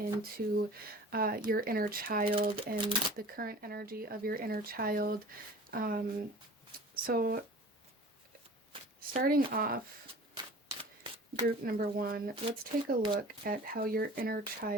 your inner child and the current energy of your inner child. So starting off, group number one, let's take a look at how your inner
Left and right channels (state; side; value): normal; both; correlation 0.42